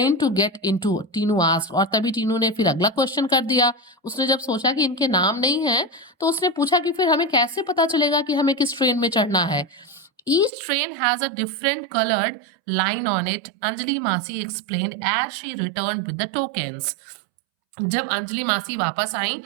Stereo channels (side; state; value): left; drops out; at 10.5 s